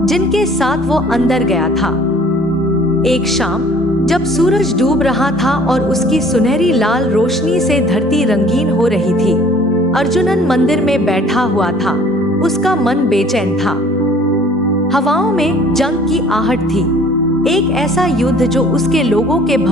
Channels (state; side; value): normal; both; correlation 0.52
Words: जिनके साथ वो अंदर गया था। एक शाम जब सूरज डूब रहा था और उसकी सुनहरी लाल रोशनी से धरती रंगीन हो रही थी, अर्जुनन मंदिर में बैठा हुआ था। उसका मन बेचैन था। हवाओं में जंग की आहट थी, एक ऐसा युद्ध जो उसके लोगों के